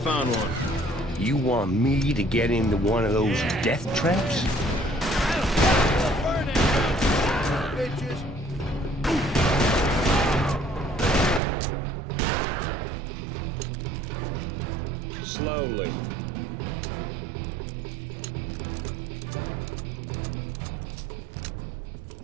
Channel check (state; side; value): drops out; left; at 11.4 s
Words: one. You want me to get into one of those death traps?